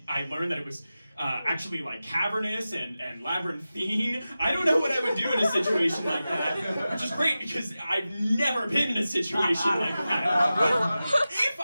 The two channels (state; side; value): inverted; both; correlation -0.94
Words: learned that it was actually like cavernous and labyrinthine. I don't know what I would do in a situation like that, which is great because I've never been in a situation like that. If